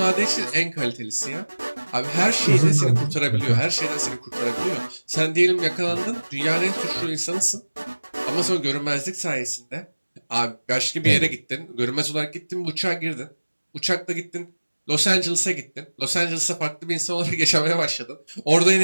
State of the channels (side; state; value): both; inverted; correlation -1.00